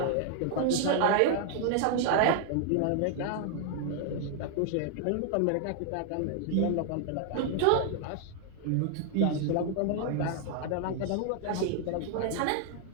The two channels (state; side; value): different; both; correlation 0.00